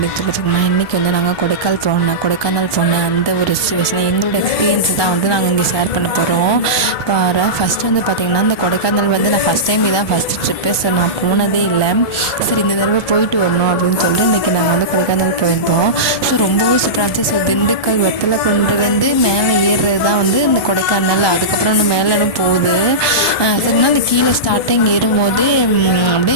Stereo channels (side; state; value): right; late; 1.2 ms